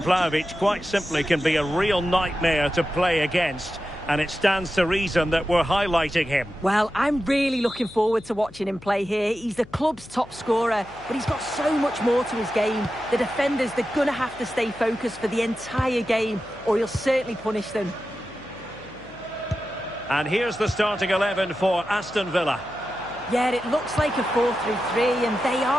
Vlahovic quite simply can be a real nightmare to play against, and it stands to reason that we're highlighting him. Well, I'm really looking forward to watching him play here. He's the club's top scorer, but he's got so much more to his game. The defenders, they're going to have to stay focused for the entire game, or he'll certainly punish them. And here's the starting 11 for Aston Villa. Yeah, it looks like a 4-3-3, and they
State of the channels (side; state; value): left; noise; hum, 22 dB below the sound